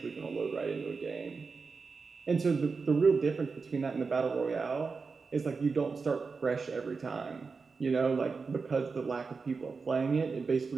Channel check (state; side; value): quieter; left; 4.7 dB